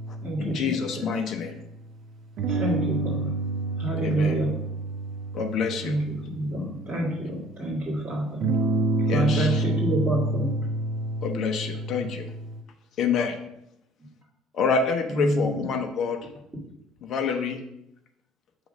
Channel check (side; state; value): both; normal; correlation 0.51